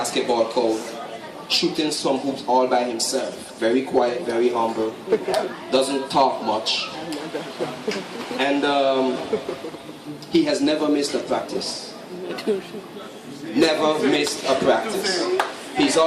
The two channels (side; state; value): both; identical; correlation 1.00